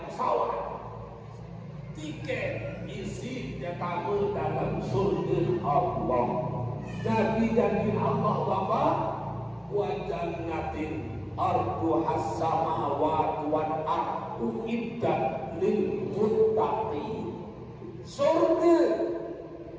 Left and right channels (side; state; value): both; identical; correlation 1.00